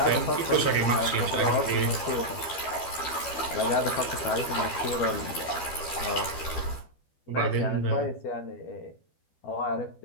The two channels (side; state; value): right; late; 12 ms